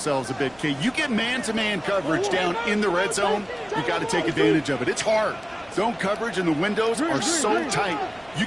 a bit. Okay, you get man-to-man coverage down in the red zone, you got to take advantage of it. It's hard. Zone coverage and the windows are so tight. You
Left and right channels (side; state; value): right; noise; rumble, 29 dB below the sound